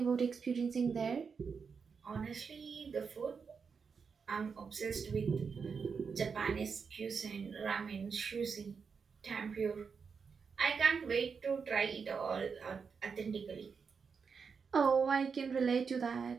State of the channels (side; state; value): left; quieter; 5.7 dB